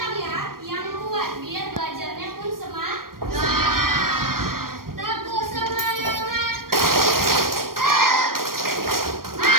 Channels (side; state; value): left; late; 0.91 ms